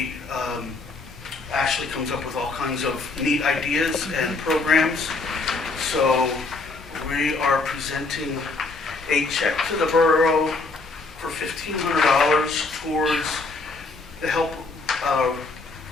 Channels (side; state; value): right; quieter; 3.7 dB